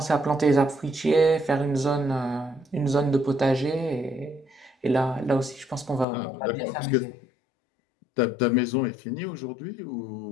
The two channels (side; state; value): right; drops out; at 6.1 s